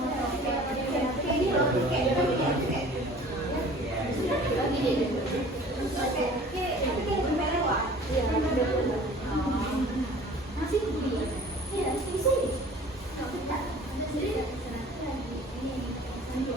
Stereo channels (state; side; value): normal; both; correlation 0.47